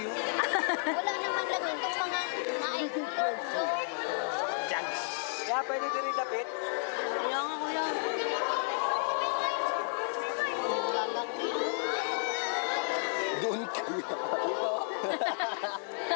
Wala naman lang itong mga naikulo. Jags. Kaya pwede din rin dapit. Kaya nga kuya. Doon kuya.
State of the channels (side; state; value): right; silent; digital silence